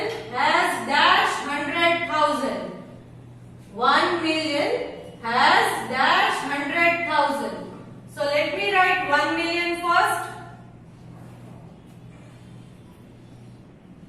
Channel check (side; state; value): both; identical; correlation 1.00